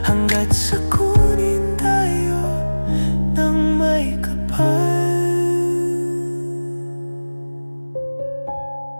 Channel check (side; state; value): both; inverted; correlation -1.00